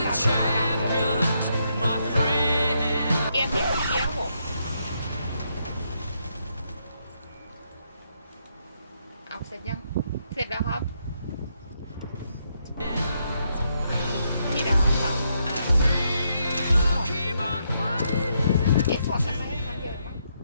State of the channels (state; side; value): inverted; both; correlation -0.77